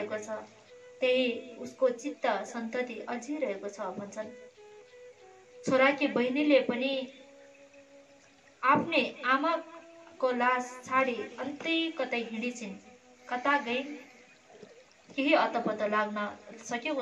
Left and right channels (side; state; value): both; identical; correlation 1.00